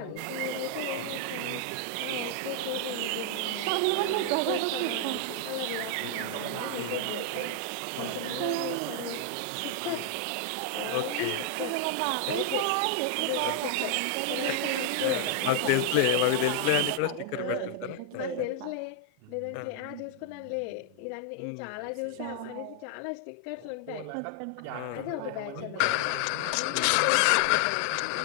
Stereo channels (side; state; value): both; different; correlation 0.00